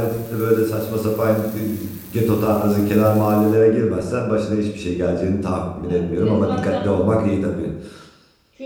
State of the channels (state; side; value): identical; both; correlation 1.00